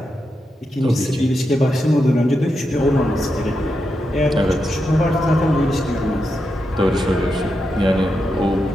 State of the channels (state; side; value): normal; both; correlation 0.86